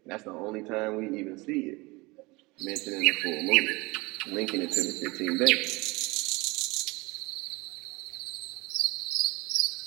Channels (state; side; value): quieter; left; 24.0 dB